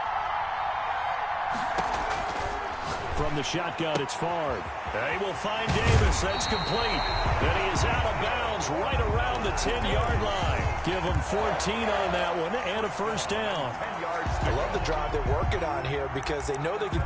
From the shotgun, it's Favre. They will find Davis. That's complete. And he is out of bounds right around the 10-yard line. Give him 14 on that one and a 1st down. I love the drive they're working on here because they know they can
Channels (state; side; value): identical; both; correlation 1.00